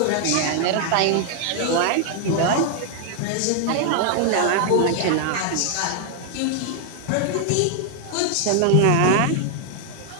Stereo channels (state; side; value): different; both; correlation 0.00